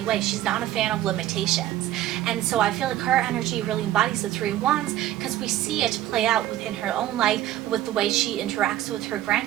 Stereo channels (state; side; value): quieter; left; 13.6 dB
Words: way. She's not a fan of limitations. And so I feel like her energy really embodies the Three of Wands because we see it play out within her own life with the way she interacts with her